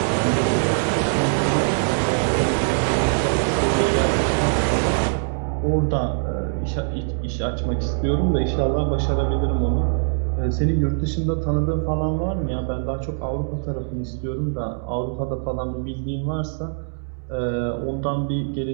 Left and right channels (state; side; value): silent; left; 64 dB below the other